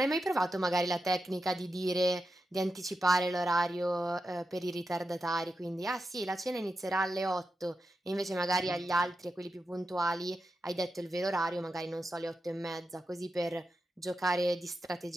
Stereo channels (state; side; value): normal; both; correlation 0.89